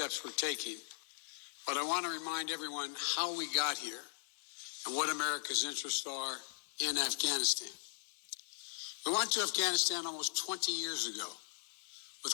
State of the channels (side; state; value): right; silent; digital silence